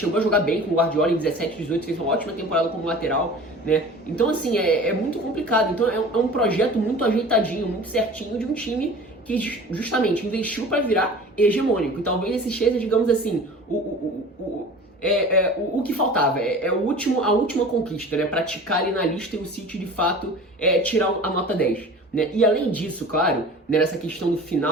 a jogar bem com o Guardiola em 17, 18, fez uma ótima temporada como lateral, né? Então, assim, é muito complicado. Então, é um projeto muito ajeitadinho, muito certinho de um time que justamente investiu para virar hegemônico. E talvez esse seja, digamos assim, o que faltava, a última conquista, né? Praticar ali na lista e o City de fato tirar a nota 10. Né? E além disso, claro, né, nessa questão do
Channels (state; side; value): normal; both; correlation 0.40